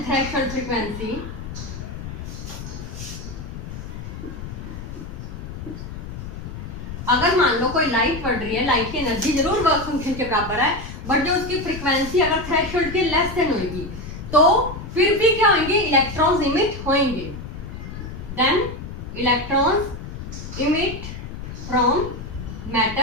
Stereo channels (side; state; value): left; noise; rumble, 9 dB below the sound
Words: threshold frequency, अगर मान लो कोई लाइट पड़ रही है, लाइट की एनर्जी जरूर वर्क फंक्शन के बराबर है, बट जो उसकी फ्रीक्वेंसी अगर थ्रेशोल्ड के लेस देन होगी तो फिर भी क्या होंगे? इलेक्ट्रॉन्स इमिट होंगे। Then electrons emit from